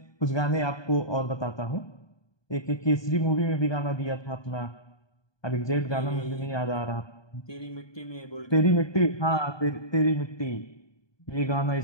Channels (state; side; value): late; right; 1.2 ms